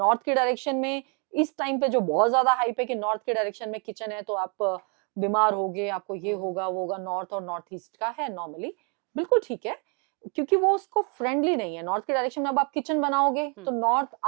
की डायरेक्शन में इस टाइम पे जो बहुत ज्यादा हाइप है कि नॉर्थ के डायरेक्शन में किचन है तो आप बीमार होगे, आपको ये हुँ, हुँ, होगा वो होगा। नॉर्थ और नॉर्थ ईस्ट का है नॉर्मली, बिल्कुल ठीक है, क्योंकि वो उसको फ्रेंडली नहीं है। नॉर्थ के डायरेक्शन में अब आप किचन बनाओगे हुँ, तो नॉर्थ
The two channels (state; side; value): quieter; left; 36.7 dB